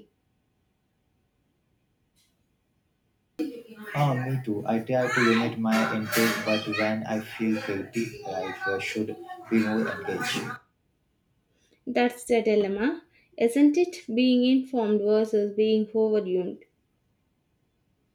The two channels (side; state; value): both; identical; correlation 1.00